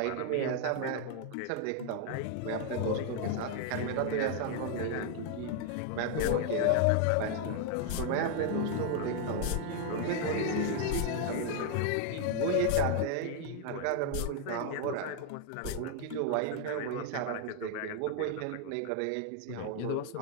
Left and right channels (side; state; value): both; different; correlation 0.00